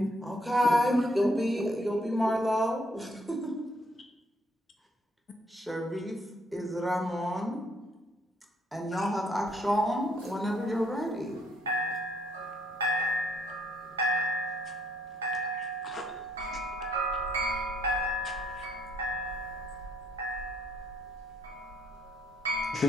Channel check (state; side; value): normal; both; correlation 0.68